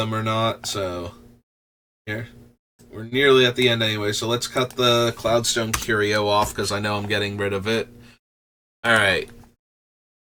or not. So here. We're nearly at the end anyway, so let's cut the Cloudstone Curio off because I know I'm getting rid of it. Alright.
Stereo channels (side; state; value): both; identical; correlation 1.00